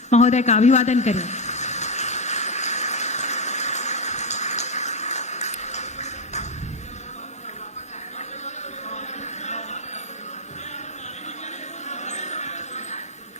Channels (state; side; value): normal; both; correlation 0.06